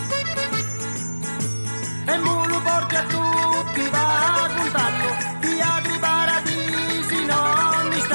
E mu lo porti a tutti va contando, di altri paradisi non mi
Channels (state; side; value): inverted; both; correlation -1.00